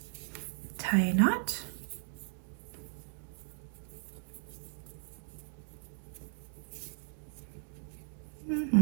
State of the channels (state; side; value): silent; left; digital silence